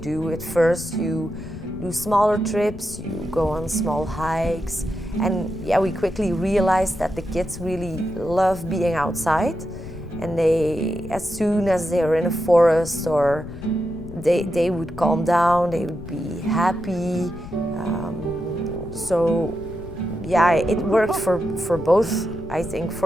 At first, you do smaller trips, you go on small hikes, and yeah, we quickly realized that the kids really love being outside, and as soon as they're in a forest or they would calm down, they would be happy. So yeah, it worked for both. I think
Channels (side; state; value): left; noise; rumble, 13 dB below the sound